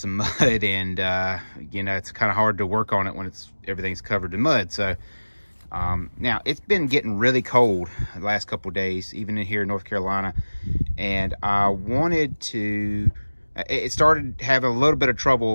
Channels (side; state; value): both; inverted; correlation -1.00